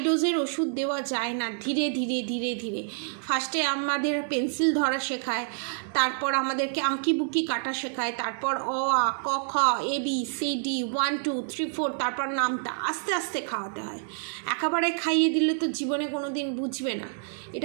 ডোজের ওষুধ দেওয়া যায় না, ধীরে ধীরে ধীরে ধীরে। ফার্স্টে আমাদের পেন্সিল ধরা শেখায়, তারপর আমাদেরকে আঁকিবুকি কাটা শেখায়, তারপর অ আ ক খ ABCD 1 2 3 4, তারপর নামটা আস্তে আস্তে খাওয়াতে হয়। একেবারে খাইয়ে দিলে তো জীবনে কোনো দিন বুঝবে না।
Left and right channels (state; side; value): silent; left; 60 dB below the other